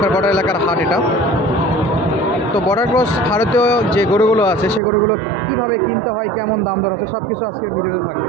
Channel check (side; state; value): left; drops out; at 4.8 s